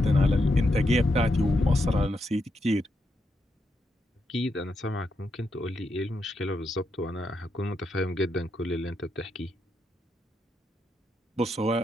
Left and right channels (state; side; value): normal; both; correlation 0.82